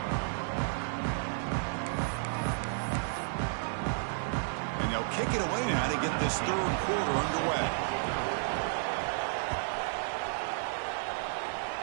Kick it away now to get this third quarter underway.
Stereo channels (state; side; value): silent; left; digital silence